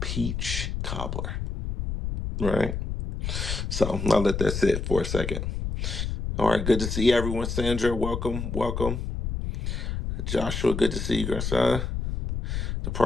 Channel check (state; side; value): noise; left; rumble, 3 dB below the sound